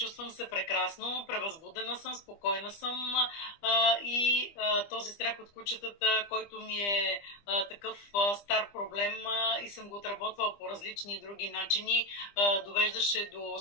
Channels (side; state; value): right; late; 25 ms